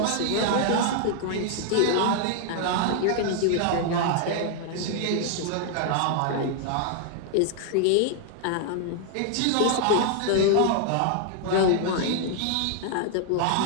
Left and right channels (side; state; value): both; different; correlation 0.00